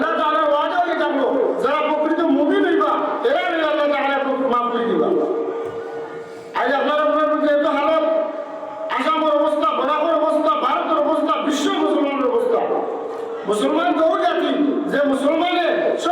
তাআলার ওয়াদা হয়ে থাকলো যারা প্রকৃত মুমিন হইবা এরা আল্লাহ তাআলা মাফ করে দিবা। আজ আপনারা মধ্যে এত হালত, আসামের অবস্থা, বরাবর অবস্থা, ভারতের অবস্থা, বিশ্ব মুসলমানের অবস্থা। মুসলমান তো ওই জাতি যে মুসলমানের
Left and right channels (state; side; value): identical; both; correlation 1.00